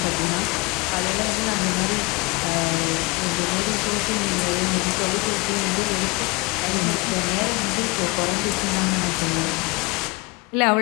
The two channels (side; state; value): right; quieter; 26.1 dB